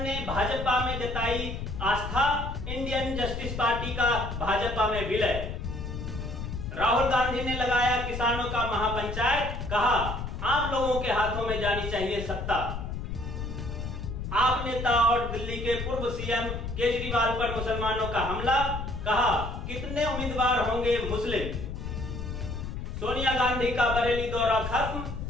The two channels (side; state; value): left; noise; rumble, 6 dB below the sound